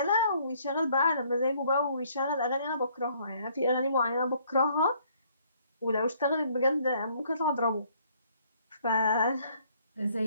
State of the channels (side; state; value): both; inverted; correlation -0.63